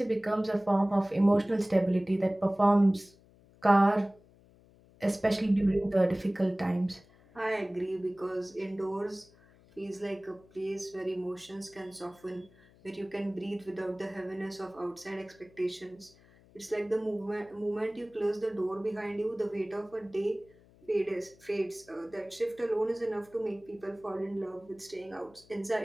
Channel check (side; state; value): left; noise; hum, 27 dB below the sound